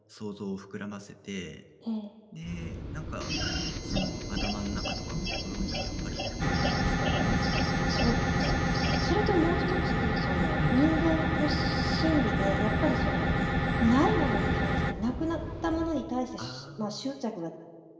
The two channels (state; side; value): identical; both; correlation 1.00